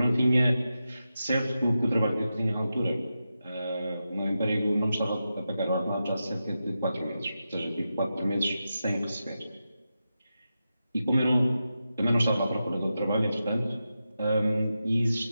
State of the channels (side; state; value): both; inverted; correlation -0.90